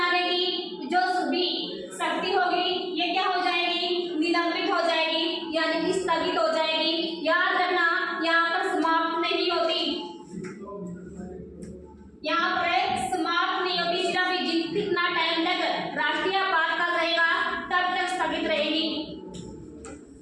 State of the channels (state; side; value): identical; both; correlation 1.00